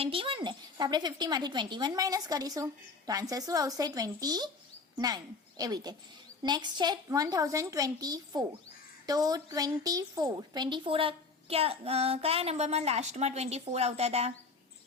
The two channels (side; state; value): right; quieter; 4.3 dB